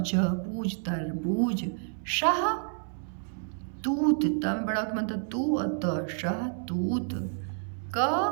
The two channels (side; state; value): left; silent; 58 dB below the other